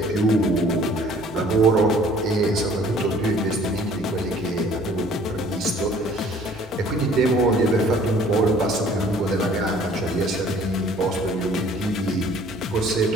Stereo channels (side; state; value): both; normal; correlation 0.54